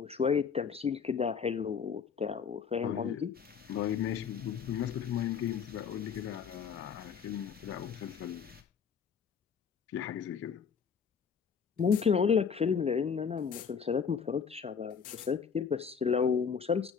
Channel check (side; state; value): right; quieter; 6.6 dB